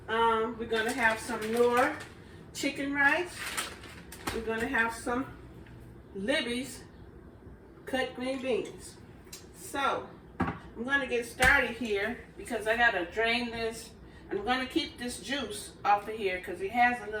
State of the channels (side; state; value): both; identical; correlation 1.00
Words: We're going to have some Nor chicken rice. We're going to have some Libby's cut green beans. So I'm going to get started here because I got to drain this. I'm going to keep this juice off of here because it has a